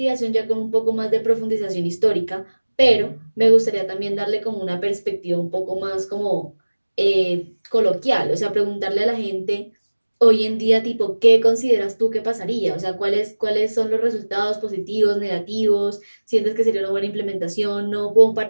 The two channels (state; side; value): inverted; both; correlation -1.00